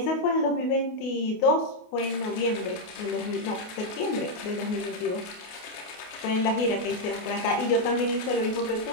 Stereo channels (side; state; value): right; late; 28 ms